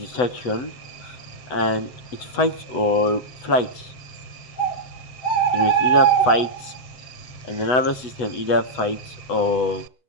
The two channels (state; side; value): late; right; 8.0 ms